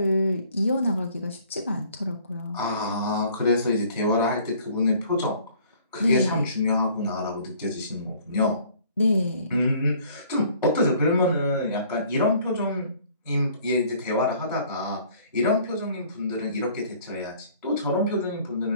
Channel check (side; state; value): both; inverted; correlation -0.55